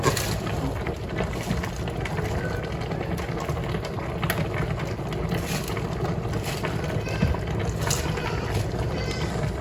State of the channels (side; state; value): both; identical; correlation 1.00